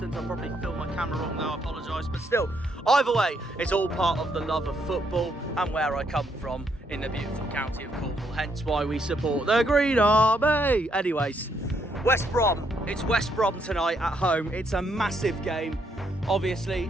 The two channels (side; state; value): both; normal; correlation 0.74